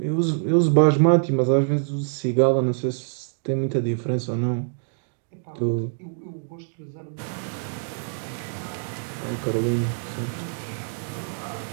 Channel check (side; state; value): left; silent; digital silence